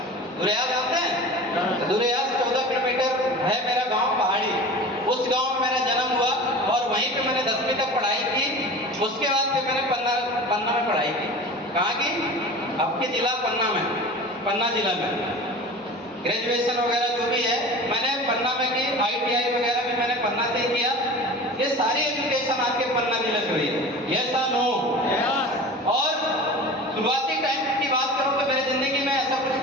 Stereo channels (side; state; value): both; normal; correlation 0.36